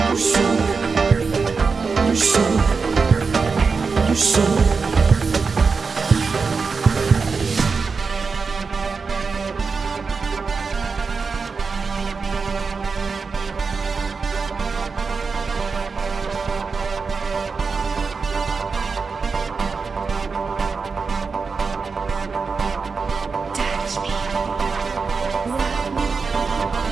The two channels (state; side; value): quieter; left; 4.8 dB